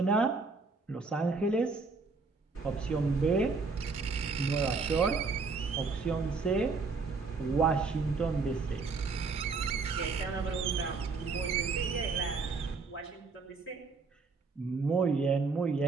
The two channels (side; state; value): left; quieter; 4.4 dB